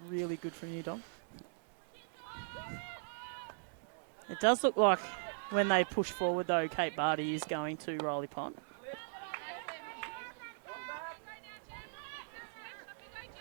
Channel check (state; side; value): silent; left; digital silence